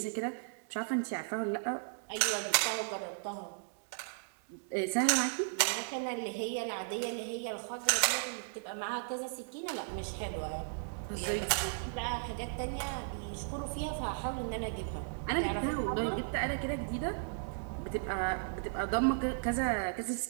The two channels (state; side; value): silent; left; digital silence